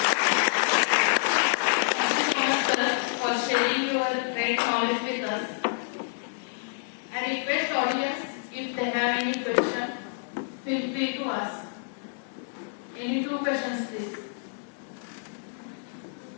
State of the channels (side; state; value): right; silent; digital silence